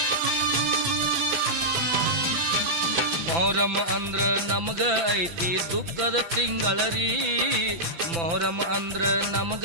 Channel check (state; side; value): late; left; 5.9 ms